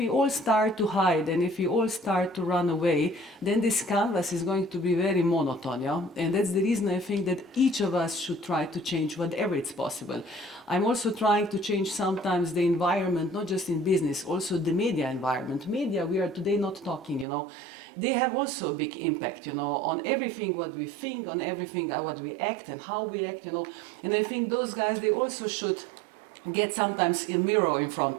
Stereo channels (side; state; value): left; drops out; at 17.2 s